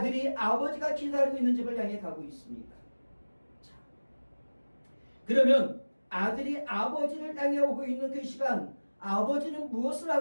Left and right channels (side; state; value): both; inverted; correlation -1.00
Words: 아버지가 기다리고 있는 집을 향해 가고 있습니다. 자, 그러면 아들이 아버지를 향해 오고 있는 그 시간, 아버지는 무엇을